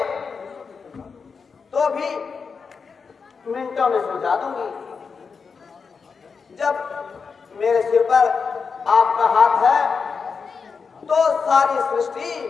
तो भी मिनटों में सुलझा दूंगी। जब मेरे सिर पर आपका हाथ है तो सारी सृष्टि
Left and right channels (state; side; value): quieter; right; 5.4 dB